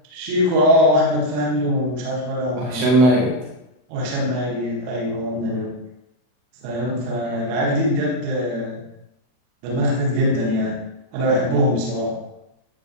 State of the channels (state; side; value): late; left; 40 ms